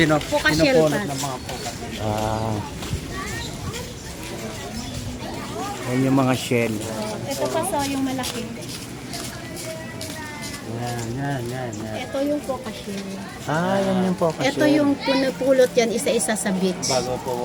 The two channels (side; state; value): both; identical; correlation 1.00